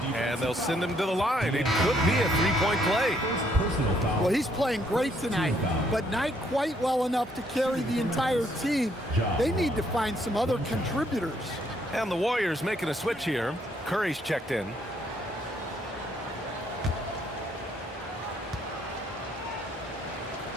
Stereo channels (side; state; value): both; normal; correlation 0.69